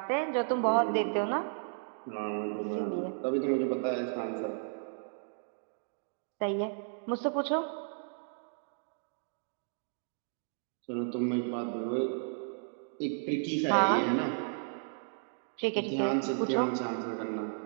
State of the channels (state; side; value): silent; left; digital silence